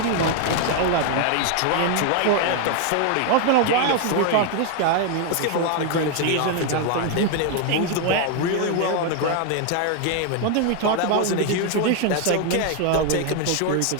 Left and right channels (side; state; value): both; different; correlation 0.01